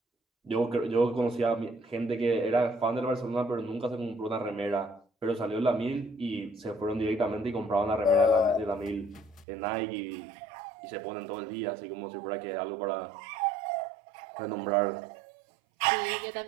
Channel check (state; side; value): drops out; left; at 9.5 s